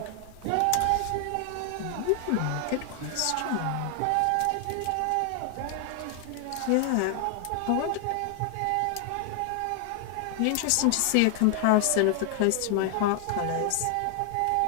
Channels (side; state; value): both; different; correlation 0.00